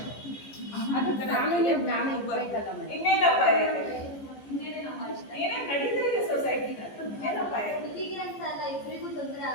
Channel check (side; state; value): right; late; 14 ms